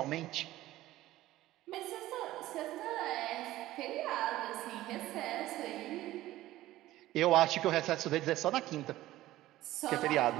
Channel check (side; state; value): left; quieter; 15.7 dB